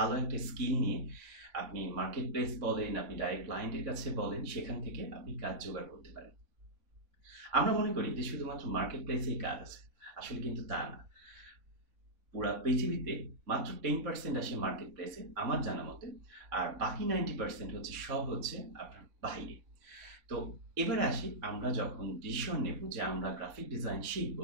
একটা স্কিল নিয়ে আপনি মার্কেট প্লেস বলেন, আপনি ডাইরেক্ট ক্লায়েন্টের কাছে বলেন, সেখান থেকে আপনি কাজ জোগাড় করতে পারেন। আমরা মনে করি যে শুধুমাত্র মার্কেট প্লেসেই কাজ আছে, আসলে কিন্তু তা না। পুরা পৃথিবীতে মাত্র 10% আসে মার্কেট প্লেসে আমার জানা মতে, আর বাকি 90% হচ্ছে সব হচ্ছে আপনার বাইরে। তো এবারে আসি, আমরা যখন ডিসিশন নেব যে আমরা গ্রাফিক ডিজাইন শিখব,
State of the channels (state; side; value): late; left; 3.5 ms